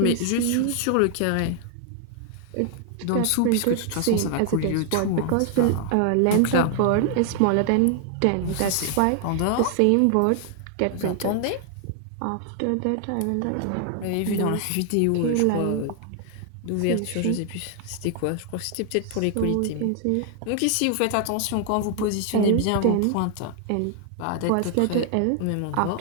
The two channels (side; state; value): both; different; correlation 0.00